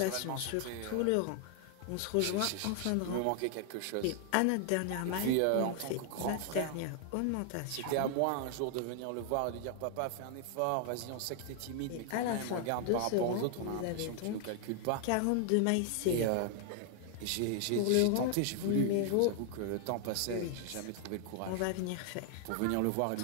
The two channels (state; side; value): different; both; correlation 0.00